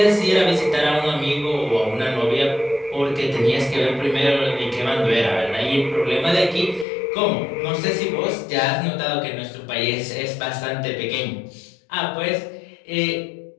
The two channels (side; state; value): right; drops out; at 6.9 s